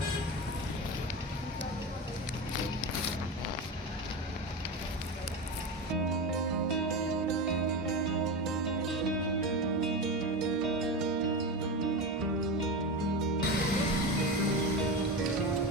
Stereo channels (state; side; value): normal; both; correlation 0.21